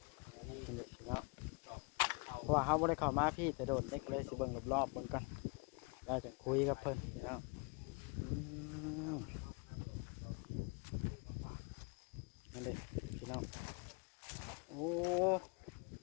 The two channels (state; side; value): quieter; right; 30.7 dB